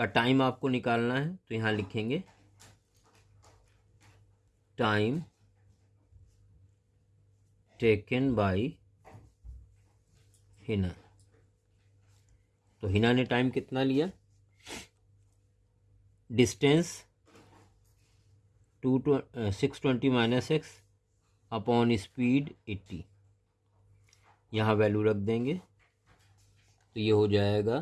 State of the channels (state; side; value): identical; both; correlation 1.00